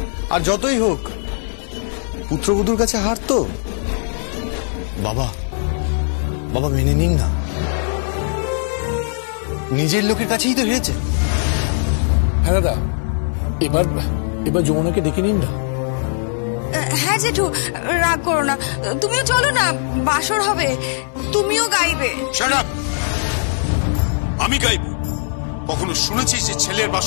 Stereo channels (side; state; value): right; silent; digital silence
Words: আর যতই হোক, পুত্রবধূর কাছে হার তো। বাবা, বাবা মেনে নিন না, নিজের লোকের কাছেই তো হেরেছে। হ্যাঁ দাদা, এবার এবার যমুনাকে ডেকে নিন না। হ্যাঁ জেঠু, রাগ করো না, তুমিও চলো না, বাসর হবে, তুমিও গাইবে। Shut up! আমি গাইব? কখনো শুনেছিস যে ছেলের